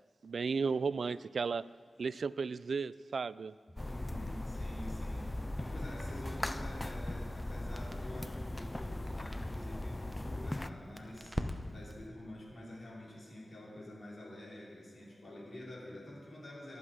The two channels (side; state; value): both; normal; correlation 0.93